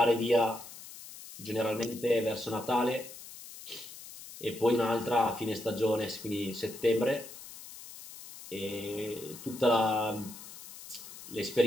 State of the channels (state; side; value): noise; left; hiss, 15 dB below the sound